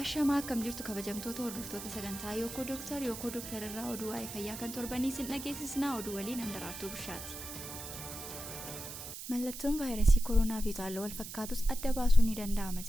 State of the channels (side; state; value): right; noise; hiss, 9 dB below the sound